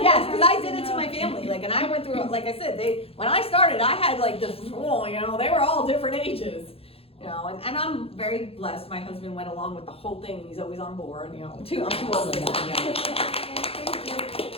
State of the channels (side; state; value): right; late; 0.28 ms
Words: did it to my family, and I went through, like I said, when I started, I had this rule, they were all different ages, and I'm very blessed. My husband went along with the whole thing, he's always on board, I'm too old for that,